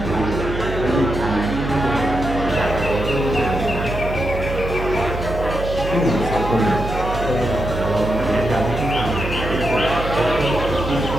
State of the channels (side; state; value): right; noise; hum, 6 dB below the sound